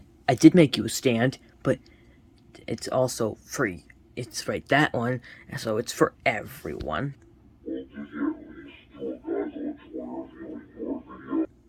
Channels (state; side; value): identical; both; correlation 1.00